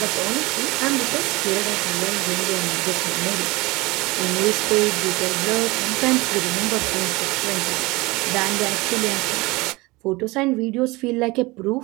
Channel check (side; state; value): left; quieter; 22.9 dB